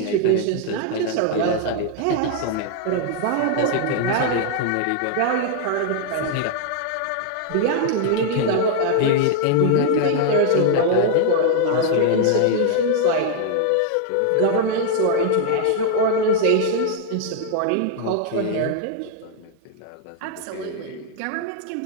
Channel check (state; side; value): different; both; correlation 0.00